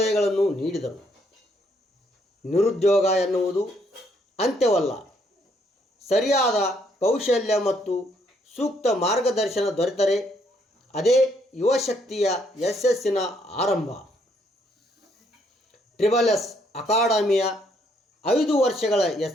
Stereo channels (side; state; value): both; normal; correlation 0.70